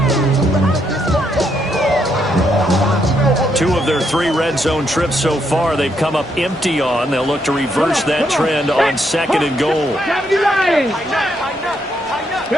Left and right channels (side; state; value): both; normal; correlation 0.76